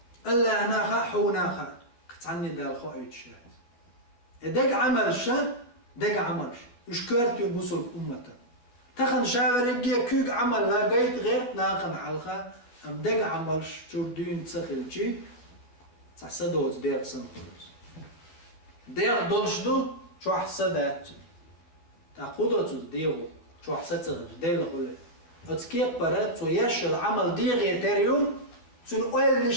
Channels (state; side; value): late; right; 12 ms